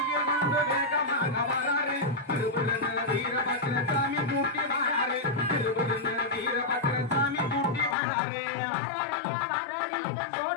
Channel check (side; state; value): right; drops out; at 8.0 s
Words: கொண்டு வேகமாக வராரு திருபுரன வீரபத்ர சாமி கூட்டி வராரு திருபுரன வீரபத்ர சாமி கூட்டி வராரு